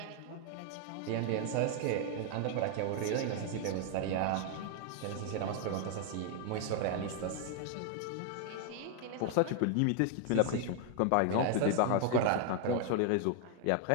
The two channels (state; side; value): different; both; correlation 0.00